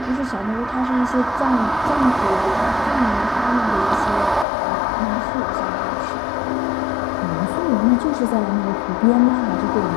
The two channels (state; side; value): drops out; right; at 4.5 s